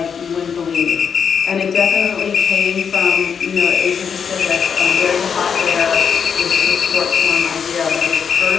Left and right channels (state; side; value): quieter; right; 6.8 dB